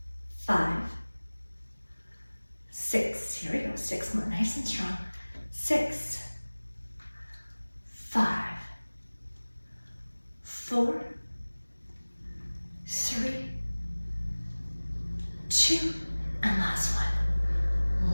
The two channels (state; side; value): inverted; both; correlation -1.00